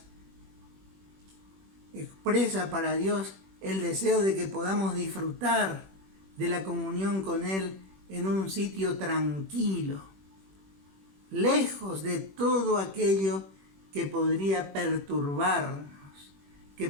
expresa para Dios el deseo de que podamos disfrutar de la comunión con Él en un sitio tranquilo, lejos de todo aquello que podría perturbarnos, que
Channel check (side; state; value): left; late; 21 ms